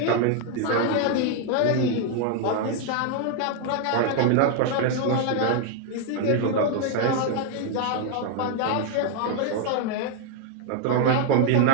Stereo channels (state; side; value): different; both; correlation 0.00